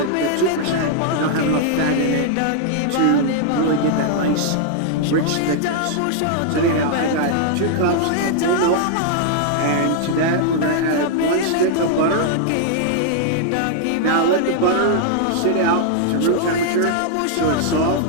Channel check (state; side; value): different; both; correlation -0.01